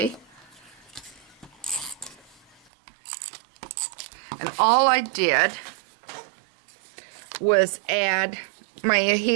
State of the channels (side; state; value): left; drops out; at 2.6 s